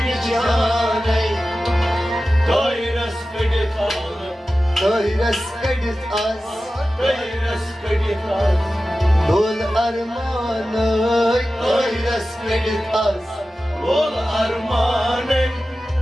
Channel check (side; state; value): both; normal; correlation 0.94